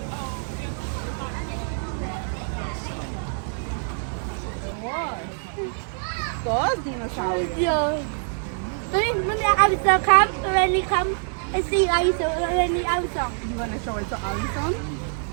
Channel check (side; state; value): left; silent; 62 dB below the other